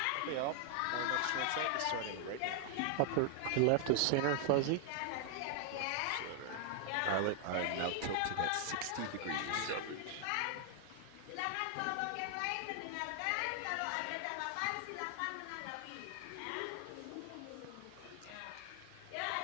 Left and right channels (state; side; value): different; both; correlation 0.00